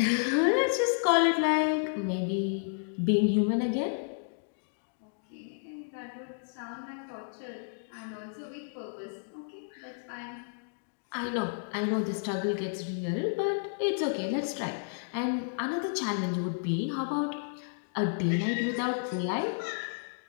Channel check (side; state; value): right; silent; digital silence